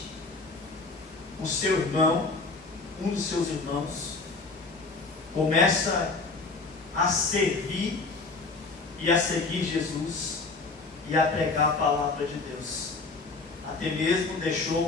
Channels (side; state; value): right; quieter; 3.8 dB